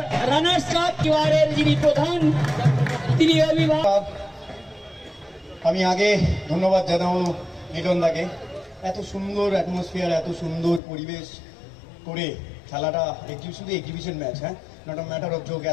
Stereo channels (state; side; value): drops out; right; at 10.8 s